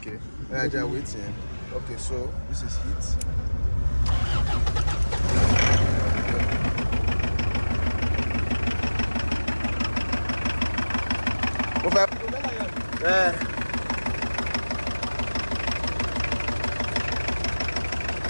I just waiting. Okay, so this is heat. Yeah.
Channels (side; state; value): both; inverted; correlation -1.00